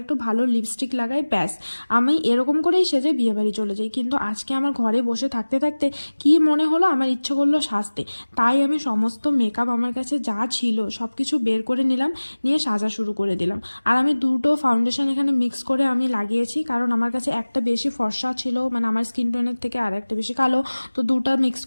ভালো লিপস্টিক লাগাই, ব্যাস আমি এরকম করেই সেজে বিয়েবাড়ি চলে যাই। কিন্তু আজকে আমার ঘরে বসে থাকতে থাকতে কি মনে হলো, আমার ইচ্ছে করলো সাজতে। তাই আমি সমস্ত মেকআপ আমার কাছে যা ছিল সব কিছু বের করে নিলাম, নিয়ে সাজা শুরু করে দিলাম। আর আমি দুটো ফাউন্ডেশন এখানে মিক্স করে আমি লাগিয়েছি, কারণ আমার কাছে একটা বেশি ফর্সা ছিল, মানে আমার স্কিন টোনের থেকে আর একটা বেশি কালো। তো দুটা মিক্স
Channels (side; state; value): both; inverted; correlation -1.00